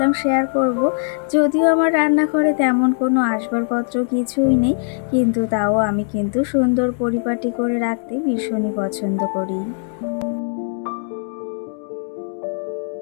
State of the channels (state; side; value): silent; right; digital silence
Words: শেয়ার করব। যদিও আমার রান্নাঘরে তেমন কোনো আসবাবপত্র কিছুই নেই, কিন্তু তাও আমি কিন্তু সুন্দর পরিপাটি করে রাখতে ভীষণই পছন্দ করি।